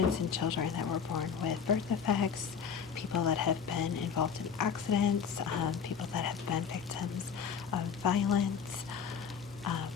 and children that were born with birth defects, people that have been involved in accidents, people that have been victims of violence,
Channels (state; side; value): quieter; right; 6.8 dB